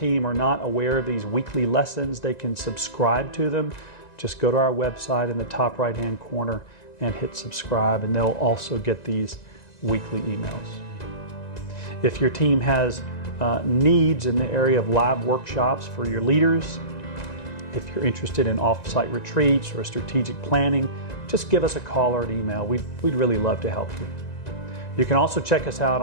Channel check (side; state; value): right; late; 1.9 ms